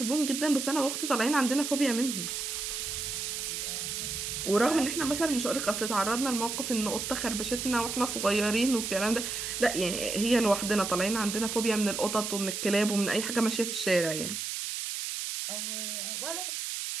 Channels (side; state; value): right; noise; hiss, 4 dB below the sound